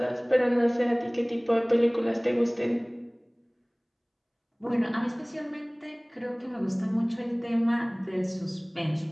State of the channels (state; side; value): identical; both; correlation 1.00